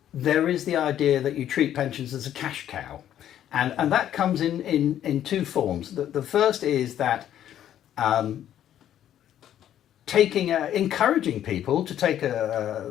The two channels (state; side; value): quieter; right; 11.0 dB